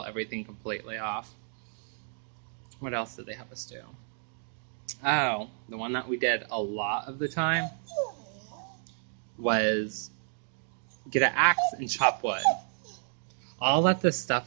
everything completely off. What else did they have us do? Oh, the one that we did a lot of the time was get an axe and chop wood. All that this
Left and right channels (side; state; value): left; silent; digital silence